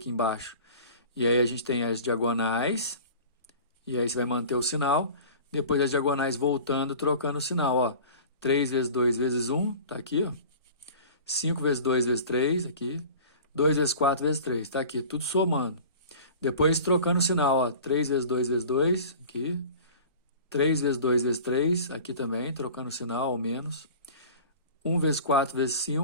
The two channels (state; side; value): inverted; both; correlation -0.41